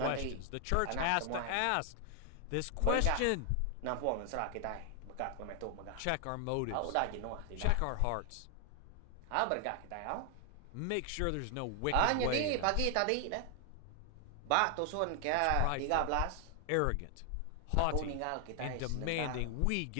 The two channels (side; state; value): both; different; correlation 0.00